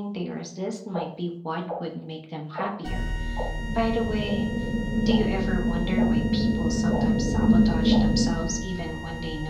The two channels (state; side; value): identical; both; correlation 1.00